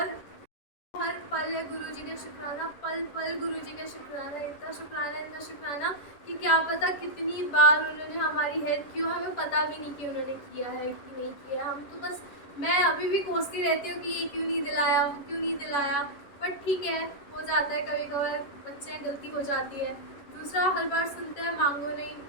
हर पल है गुरुजी का शुक्राना, पल पल गुरुजी का शुक्राना, इतना शुक्राना कि क्या पता कितनी बार उन्होंने हमारी हेल्प की हो, हमें पता भी नहीं कि उन्होंने किया है कि नहीं किया। हम तो बस, मैं अभी भी कोसती रहती हूँ कि ये क्यों नहीं दिलाया, बट ठीक है, हो जाता है कभी कभार, बच्चे हैं, गलती हो जाती है। दूसरा, हर बार सुनते हैं मांगो नहीं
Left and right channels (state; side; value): late; right; 11 ms